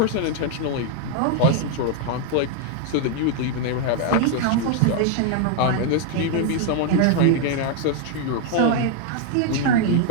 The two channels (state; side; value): different; both; correlation 0.00